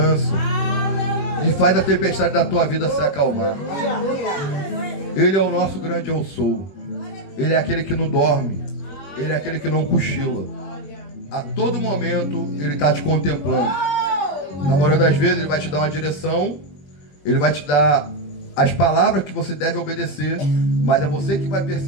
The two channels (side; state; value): right; late; 21 ms